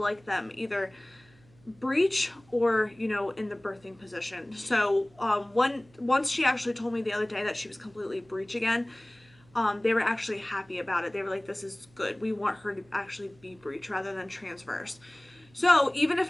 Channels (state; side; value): noise; right; hum, 29 dB below the sound